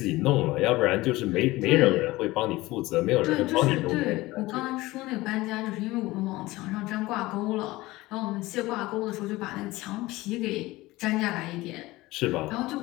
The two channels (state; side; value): quieter; right; 19.3 dB